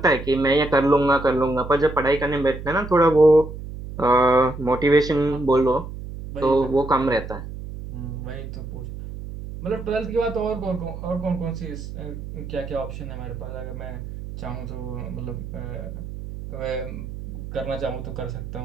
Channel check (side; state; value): right; noise; hum, 10 dB below the sound